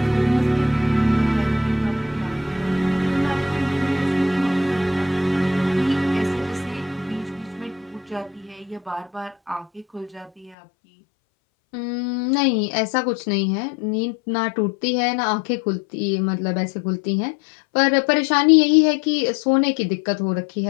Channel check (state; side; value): drops out; right; at 10.6 s